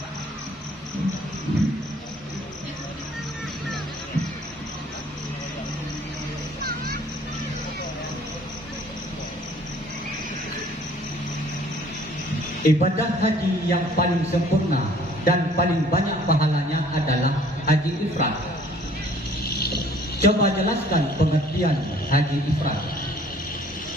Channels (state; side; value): normal; both; correlation 0.56